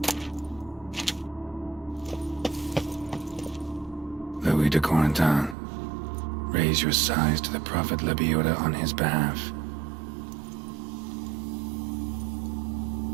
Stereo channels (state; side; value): drops out; left; at 5.6 s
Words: Louis de Corentin, raise your sighs to the Prophet Lepiota on his behalf.